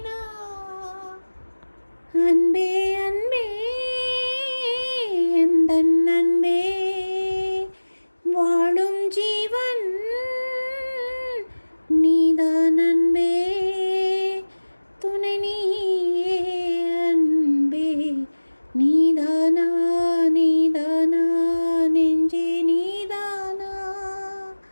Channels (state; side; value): inverted; both; correlation -1.00